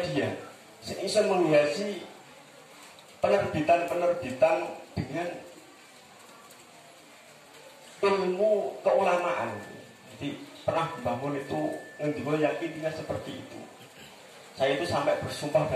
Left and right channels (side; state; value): both; identical; correlation 1.00